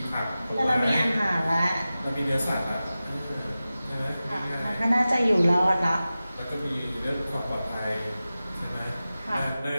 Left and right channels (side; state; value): both; inverted; correlation -0.95